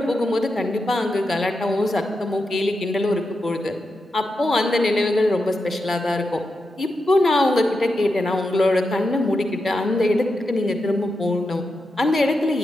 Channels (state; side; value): normal; both; correlation 0.88